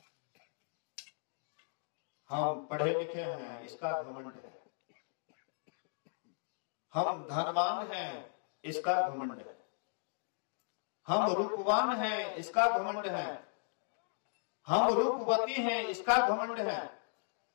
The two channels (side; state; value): right; silent; digital silence